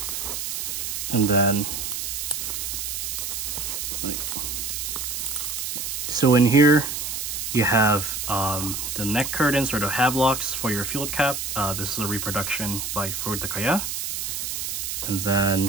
And then, so in here, you have the neck curtains or the havelocks for your field cap. This is a reproduction by Furutakaya. And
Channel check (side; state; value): right; noise; hiss, 3 dB below the sound